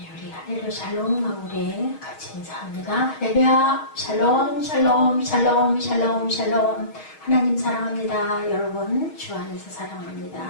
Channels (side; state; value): right; late; 6.4 ms